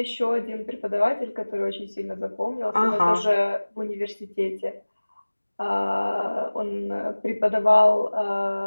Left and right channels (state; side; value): inverted; both; correlation -1.00